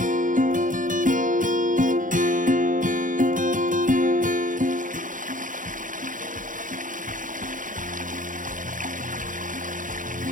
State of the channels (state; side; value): late; left; 0.38 ms